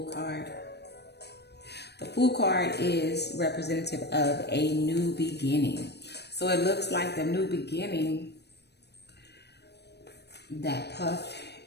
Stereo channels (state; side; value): late; right; 0.49 ms